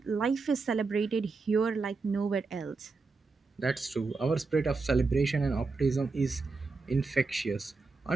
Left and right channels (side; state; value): left; quieter; 4.1 dB